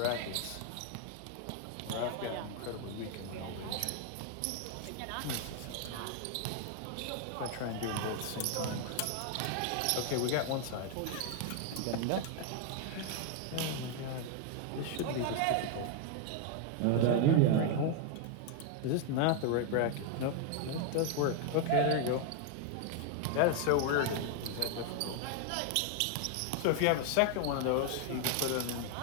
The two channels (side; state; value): both; different; correlation 0.00